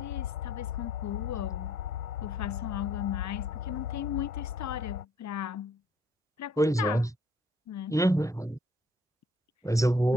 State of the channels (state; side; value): normal; both; correlation 0.62